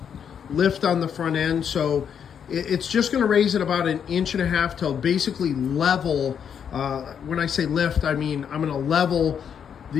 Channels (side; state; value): right; quieter; 7.9 dB